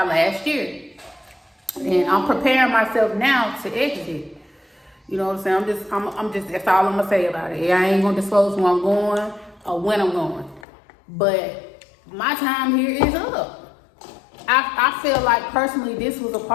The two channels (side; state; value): right; drops out; at 10.7 s